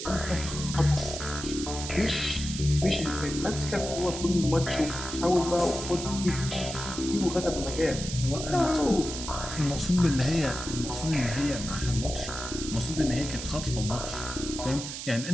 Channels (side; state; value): right; noise; hiss, 7 dB below the sound